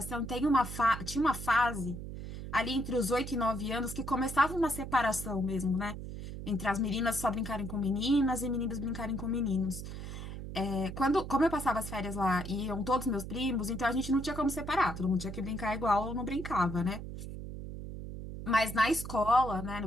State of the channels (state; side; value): noise; right; hum, 8 dB below the sound